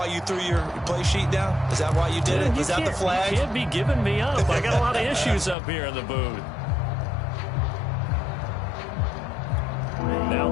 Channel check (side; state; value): right; drops out; at 5.6 s